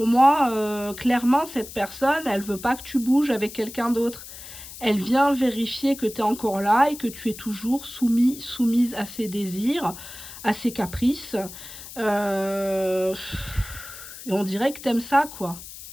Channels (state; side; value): noise; left; hiss, 14 dB below the sound